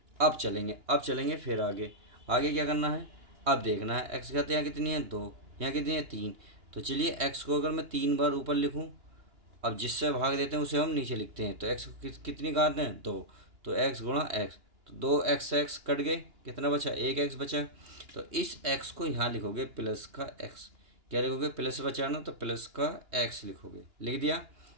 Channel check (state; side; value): late; left; 2.9 ms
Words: अब चलेंगे फिर आगे। आगे क्या करना है, अब देखना है x घात यहाँ कितनी है 2, यहाँ कितनी है 3। तो चलिए x को अगर मैं 3 बार ऊपर लिखूँ, अब जिससे भाग देते हैं उसे हम नीचे लिखते हैं। तो x कितनी घात है 2, तो x गुणा x, तो 2x कट गए, कितना बचा 1x बचा। तो इस x को यहाँ लिखोगे प्लस का x, क्या लिखोगे प्लस बचा ना, तो प्लस का x लिखोगे, लिख दिया।